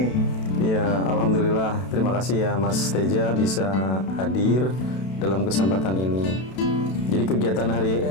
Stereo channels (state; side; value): late; right; 32 ms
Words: Ya, alhamdulillah. Terima kasih ya Mas Teja bisa hadir dalam kesempatan ini. Jadi kegiatan hari